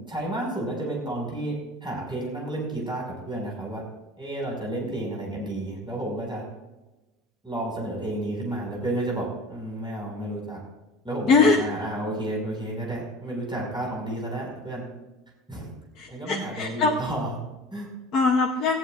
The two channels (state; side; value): normal; both; correlation 0.39